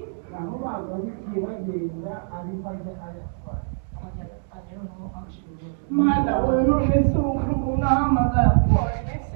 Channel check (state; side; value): silent; left; digital silence